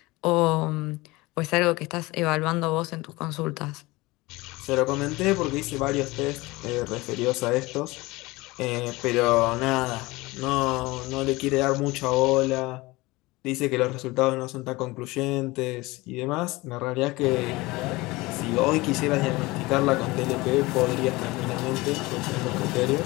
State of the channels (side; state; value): right; quieter; 21.6 dB